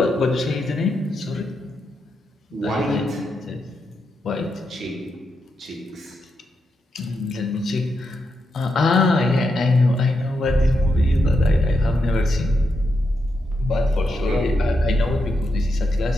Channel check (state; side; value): normal; both; correlation 0.84